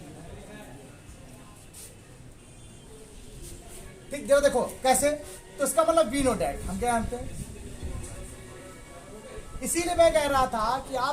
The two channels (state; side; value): identical; both; correlation 1.00